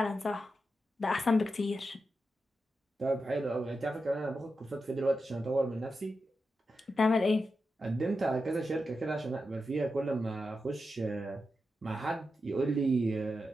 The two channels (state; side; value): normal; both; correlation 0.89